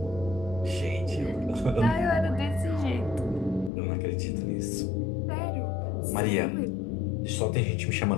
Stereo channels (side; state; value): right; drops out; at 3.7 s